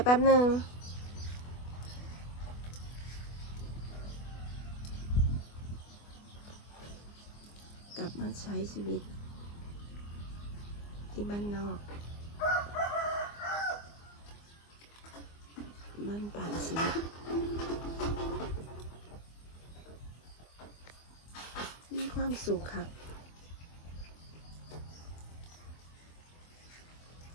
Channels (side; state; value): right; late; 24 ms